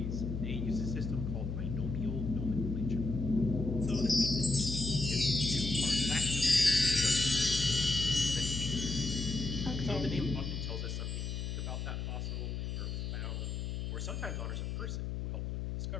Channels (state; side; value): noise; left; hum, 3 dB below the sound